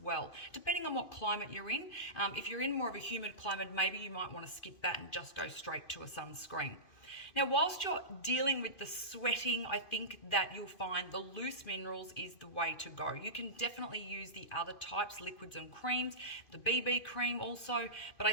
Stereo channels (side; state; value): right; late; 2.5 ms